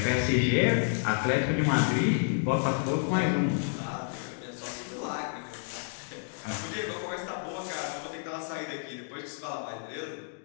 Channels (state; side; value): silent; right; digital silence